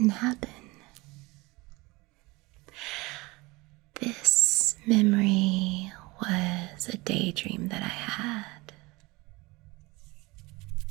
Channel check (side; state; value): left; quieter; 23.3 dB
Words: happen. This memory was a daydream that I had.